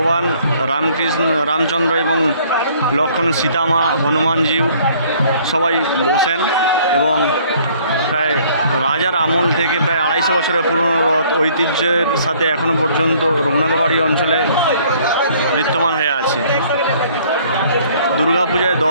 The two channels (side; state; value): both; inverted; correlation -0.59